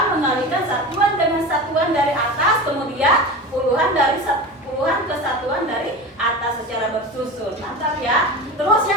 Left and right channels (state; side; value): normal; both; correlation 0.29